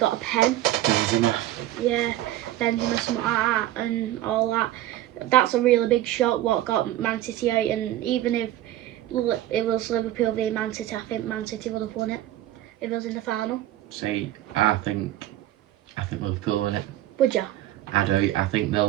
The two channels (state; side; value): quieter; left; 13.8 dB